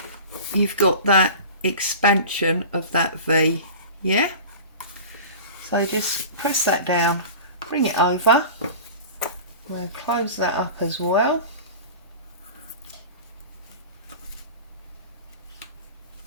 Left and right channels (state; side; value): inverted; both; correlation -0.36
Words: you've got that expansion of that V, yeah? So just press that down, bring it over, we'll close that up as well.